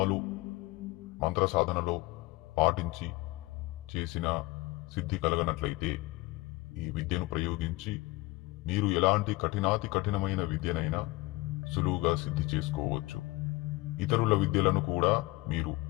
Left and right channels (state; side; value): quieter; right; 21.3 dB